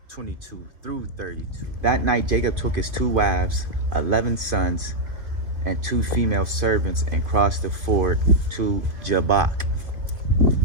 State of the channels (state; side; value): late; left; 2.6 ms